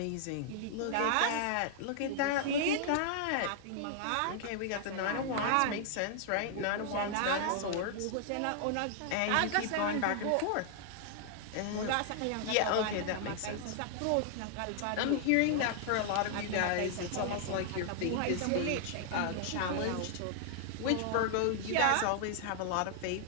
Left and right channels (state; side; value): different; both; correlation -0.01